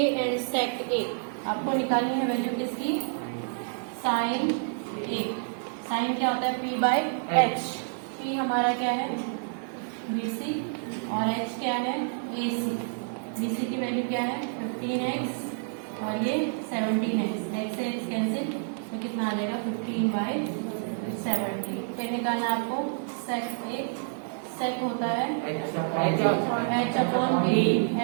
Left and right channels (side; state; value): left; silent; digital silence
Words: एंड सेक ए। आपको निकालनी है वैल्यू किसकी, साइन ए। साइन क्या होता है पी बाई एच, पी हमारा क्या है बीसी और एच क्या है एसी। बीसी की वैल्यू क्या है 15x और ये 17x, एक्स से एक्स कैंसिल तो कितना आ जाएगा 15/70। फिर निकालना आपको सेक ए, सेक होता है एच अपॉन बी,